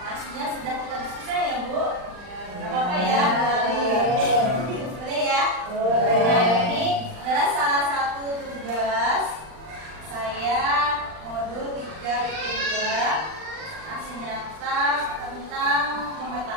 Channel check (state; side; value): late; left; 39 ms